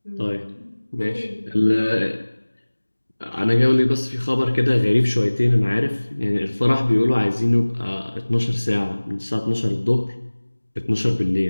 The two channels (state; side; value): inverted; both; correlation -1.00